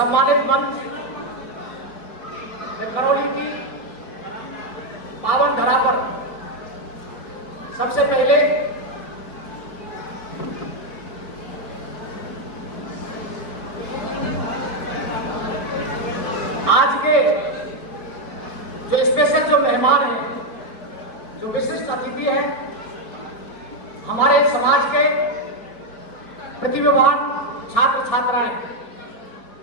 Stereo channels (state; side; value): late; right; 4.4 ms